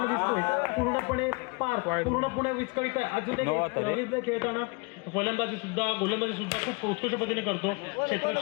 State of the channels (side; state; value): right; quieter; 29.9 dB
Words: दिसतोय, पूर्णपणे पूर्णपणे विस्कळीत आहे. अजून एक खेळताना फलंदाजी सुद्धा गोलंदाजी सुद्धा खूप उत्कृष्ट पद्धतीने करतो.